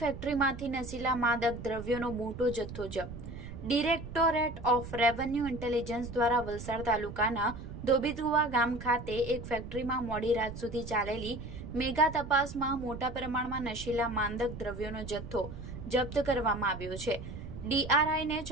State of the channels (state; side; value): noise; right; rumble, 11 dB below the sound